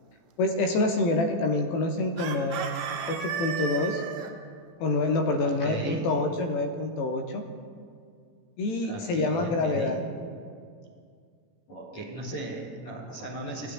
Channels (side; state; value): right; late; 18 ms